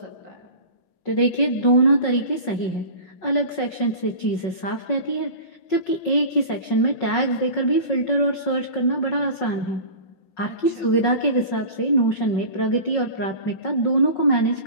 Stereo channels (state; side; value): late; right; 5.4 ms